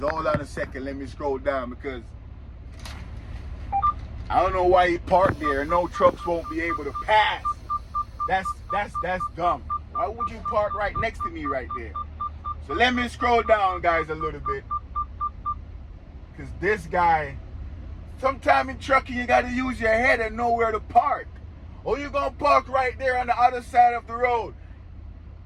on a second. Let me scroll down because I don't know why he parked there. No trucks won't be able to pass. That's dumb. Why would you park right next to me right there? So let me scroll down, guys, a little bit. Because this guy, sometime in trucking, you got to use your head and know where to park. Or you're going to park right there on the other side of the road.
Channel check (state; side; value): identical; both; correlation 1.00